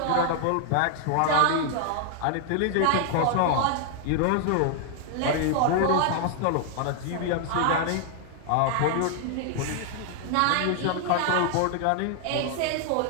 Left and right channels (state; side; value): different; both; correlation 0.00